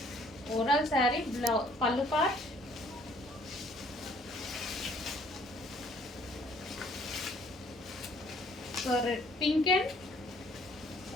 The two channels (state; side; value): normal; both; correlation 0.60